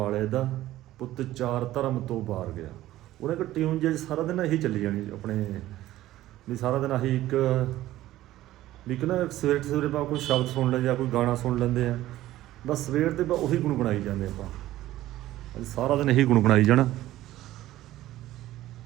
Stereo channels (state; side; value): quieter; left; 15.0 dB